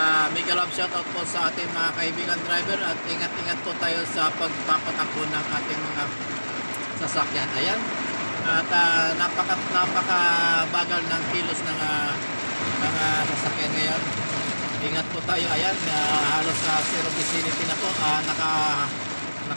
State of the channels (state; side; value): inverted; both; correlation -1.00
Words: mega love shoutout po sa ating mga kaibigan driver. At ingat-ingat po tayo sa pagpapatakbo ng ating mga sasakyan. Ayan. At napakabagal ng kilos ng sasakyan ngayon. Ingat po tayo. Ayan, halos sa zero vicinity na po.